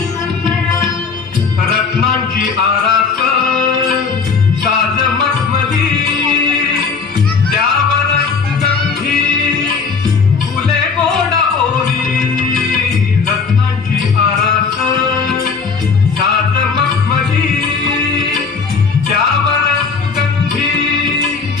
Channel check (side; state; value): right; quieter; 5.1 dB